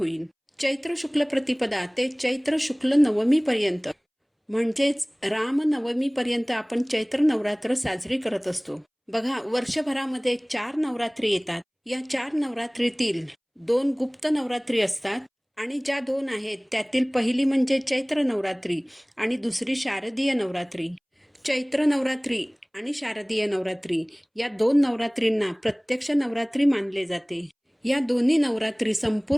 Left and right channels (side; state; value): both; identical; correlation 1.00